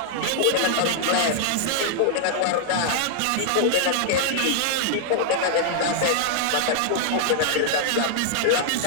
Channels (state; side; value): different; both; correlation -0.01